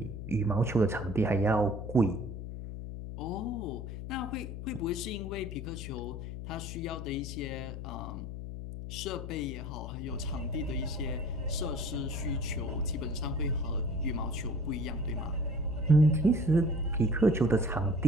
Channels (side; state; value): left; noise; hum, 7 dB below the sound